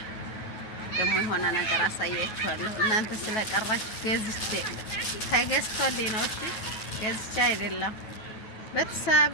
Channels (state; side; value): late; right; 9.2 ms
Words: ደግሞ የሆነ ነገር አሳያችኋለሁ። እናንተ ስለቀራችሁ ገዝቼ ተገዝቶልኝ ነው። እሺ ገዝቼ አይደለም። ቤተሰብ